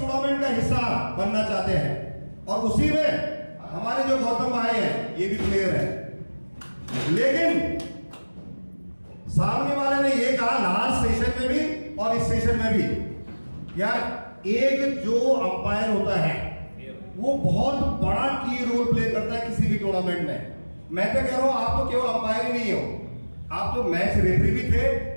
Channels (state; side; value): inverted; both; correlation -1.00